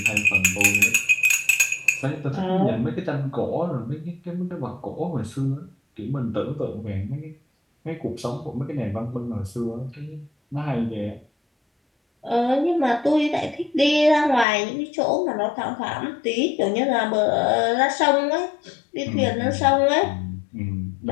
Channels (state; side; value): drops out; right; at 14.5 s